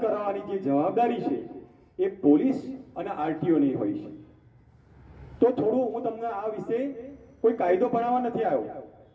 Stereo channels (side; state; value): both; identical; correlation 1.00